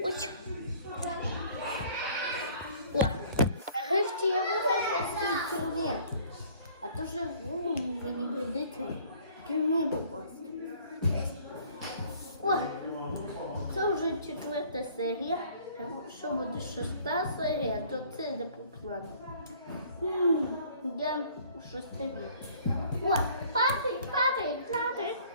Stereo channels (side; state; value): both; inverted; correlation -0.55